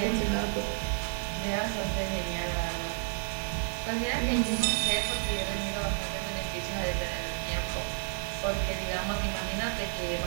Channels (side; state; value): left; silent; 57 dB below the other